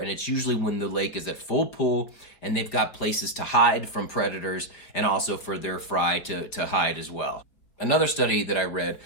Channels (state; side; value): late; right; 5.0 ms